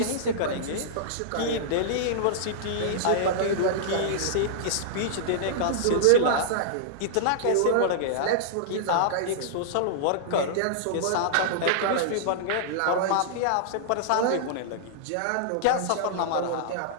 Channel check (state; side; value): different; both; correlation -0.02